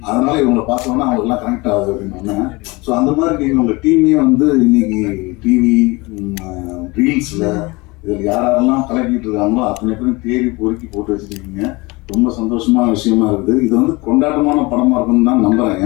அதனால இவங்களை பார்த்தோன்னா அவங்களுக்குலாம் கனெக்ட் ஆகுது அப்படின்னு. ஸோ அந்த மாதிரி நீங்கள் உங்கள் டீமே வந்து இன்னைக்கு டிவி ரீல்ஸில் இதில் யாரெல்லாம் கலக்கிட்டு இருக்காங்களோ அத்தனை பேரும் தேடி பொறுக்கி போட்டு வச்சுருக்கீங்க. ரொம்ப சந்தோஷமான விஷயமா இருக்குது. இது வந்து கொண்டாட்டமான படமாக இருக்குன்னு தான் நம்புகிறேன்.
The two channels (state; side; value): quieter; right; 24.2 dB